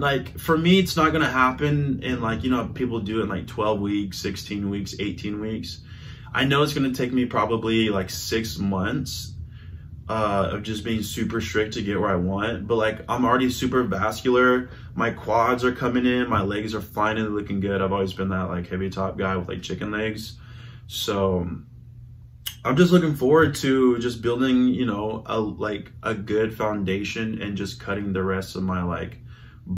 like for me, it's not gonna happen in like, you know, people do it in like 12 weeks, 16 weeks, 18 weeks. I know it's gonna take me probably like 6 months of just being super strict to get where I want. But like I'm already super vascular. My quads are coming in. My legs are finally looking good. I've always been that like heavy top guy with like chicken legs. So I'm just looking forward to just building, you know, a good foundation and just cutting the rest of my like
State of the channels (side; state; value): both; identical; correlation 1.00